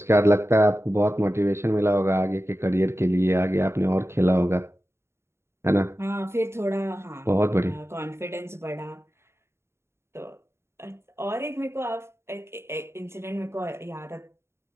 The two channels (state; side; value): late; left; 0.13 ms